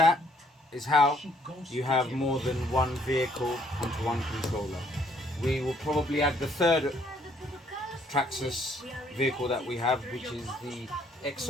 is how you have more than one vehicle onto one controller. We will probably add the third Traxxas vehicle that we have, which is the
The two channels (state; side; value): normal; both; correlation 0.66